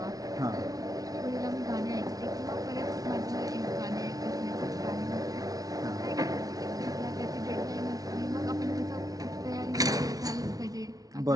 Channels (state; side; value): late; left; 0.18 ms